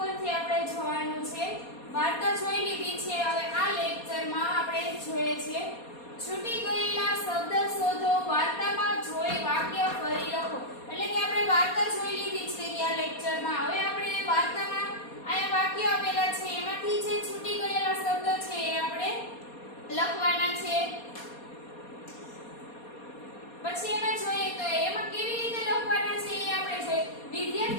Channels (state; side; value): late; right; 4.2 ms